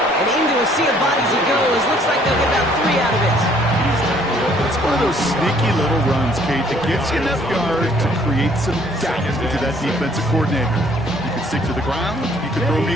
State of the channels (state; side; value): normal; both; correlation 0.61